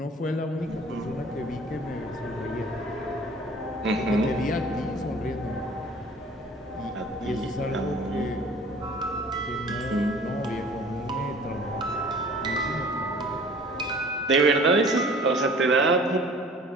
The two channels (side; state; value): both; normal; correlation 0.48